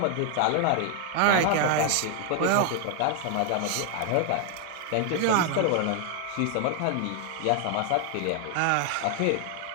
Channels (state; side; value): different; both; correlation 0.00